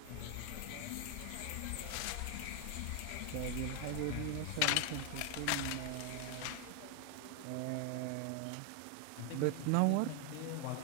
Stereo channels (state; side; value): different; both; correlation 0.00